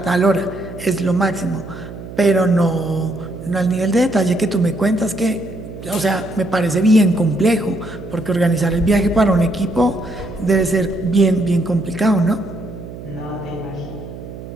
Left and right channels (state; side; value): noise; right; hum, 13 dB below the sound